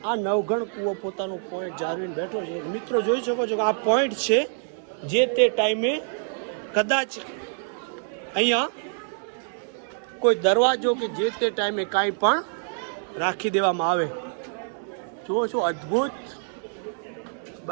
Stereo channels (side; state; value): left; silent; digital silence